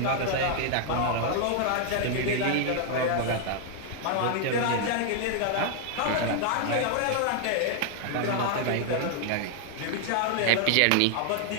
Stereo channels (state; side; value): different; both; correlation 0.00